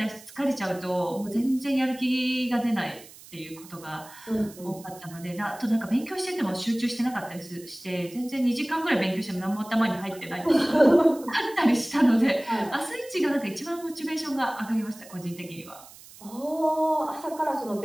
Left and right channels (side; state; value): right; noise; hiss, 20 dB below the sound